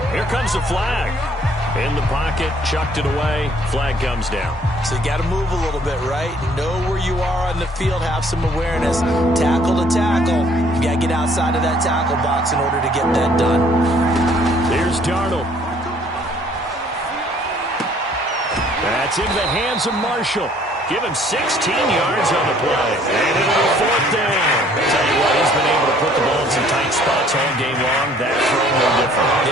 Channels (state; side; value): normal; both; correlation 0.60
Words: Here comes the flag. In the pocket, chucked it away. Flag comes down. So you got to move a little bit, right? Know where you are on the field, have some awareness. Tackle to tackle. You got to get outside of that tackle box in order to get that done. Here's Darnold. That's in the hands of Marshall. Give him 16 yards on the play. And it'll be 4th down. Tell you what, he's been able to put the ball in some tight spots all game long. That throw no different.